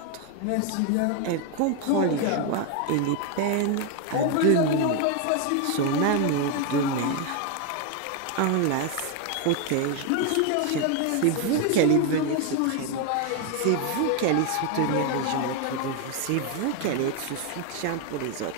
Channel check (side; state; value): both; different; correlation 0.01